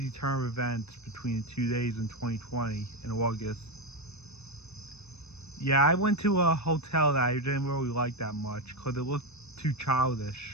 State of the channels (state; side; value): late; right; 0.80 ms